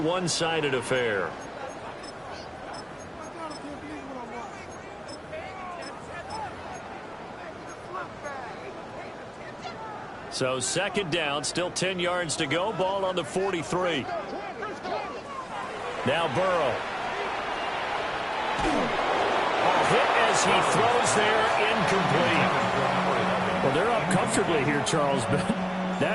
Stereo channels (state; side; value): identical; both; correlation 1.00